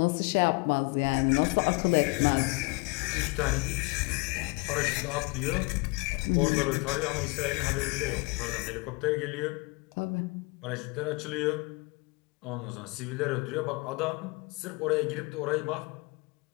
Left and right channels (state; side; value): quieter; right; 27.9 dB